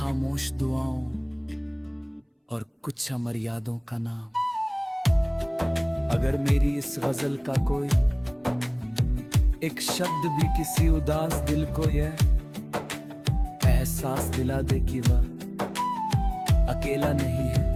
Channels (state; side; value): identical; both; correlation 1.00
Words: दुआओं और कुछ अमर यादों का नाम। अगर मेरी इस गजल का कोई एक शब्द भी किसी उदास दिल को यह एहसास दिला दे कि वह अकेला नहीं